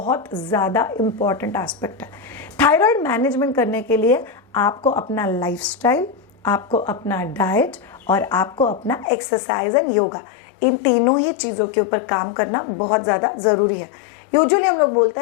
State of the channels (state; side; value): drops out; right; at 9.1 s